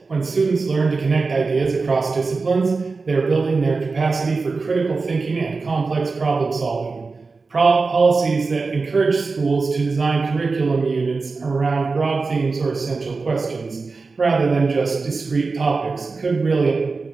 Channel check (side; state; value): left; quieter; 4.2 dB